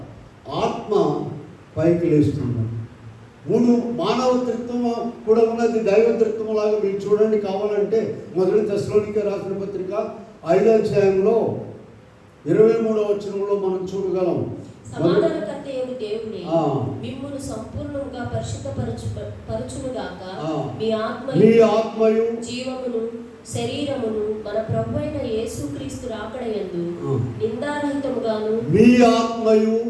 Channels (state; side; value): identical; both; correlation 1.00